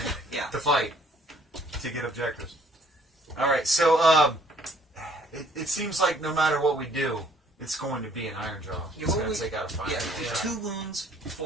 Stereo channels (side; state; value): both; normal; correlation 0.60